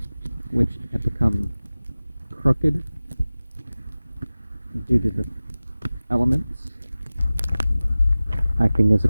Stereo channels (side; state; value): both; inverted; correlation -0.97